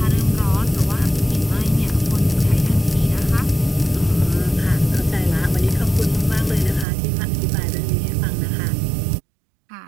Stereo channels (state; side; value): drops out; left; at 6.9 s